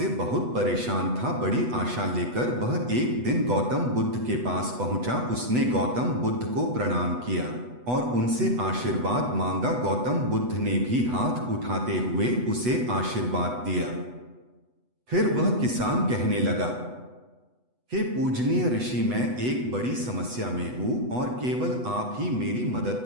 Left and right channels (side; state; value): left; late; 8.1 ms